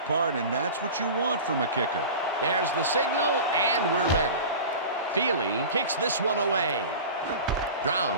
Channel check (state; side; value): inverted; both; correlation -0.33